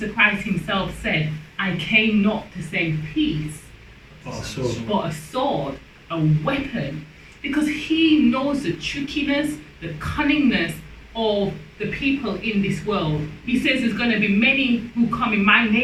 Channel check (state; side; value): identical; both; correlation 1.00